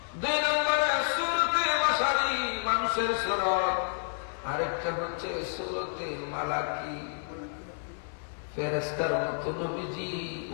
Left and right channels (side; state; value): right; silent; digital silence